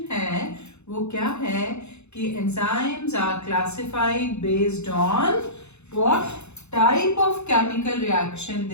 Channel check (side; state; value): right; late; 0.81 ms